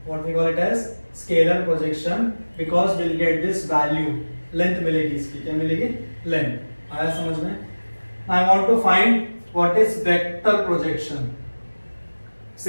What we call it as scalar projection because will get this value. Length मिलेगी इसकी, क्या मिलेगी? लेंथ. आया समझ में? I want to find what is vector projection.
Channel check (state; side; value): inverted; both; correlation -1.00